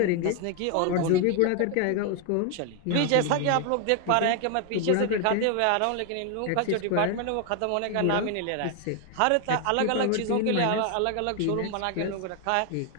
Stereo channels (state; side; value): different; both; correlation 0.01